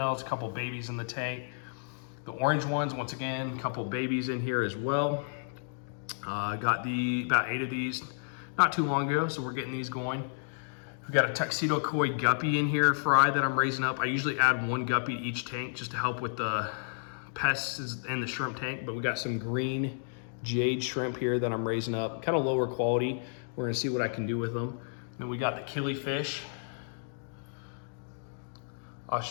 a couple babies in the tank. The orange ones, once again, a couple babies in here as well. Got about 8 of these not too long ago, so we're getting these going. We got a tuxedo koi guppy in here, fry, that I'm raising up. I usually add 1 guppy to each tank just to help with the pests in the shrimp tank, but we got some green jade shrimp here that I'm raising up, kind of lower quality. We're gonna see what I can do with them. Then we got the killifish,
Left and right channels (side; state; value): right; silent; digital silence